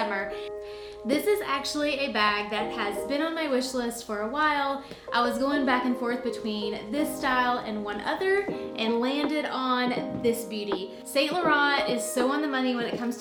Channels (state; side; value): identical; both; correlation 1.00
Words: This is actually a bag that has been on my wish list for a while. I was going back and forth between this style and one other and landed on this beauty. Saint Laurent is so on the money when it comes